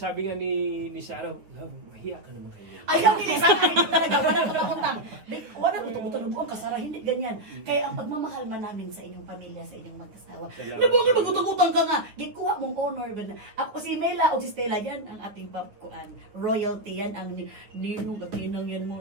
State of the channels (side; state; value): left; late; 9.6 ms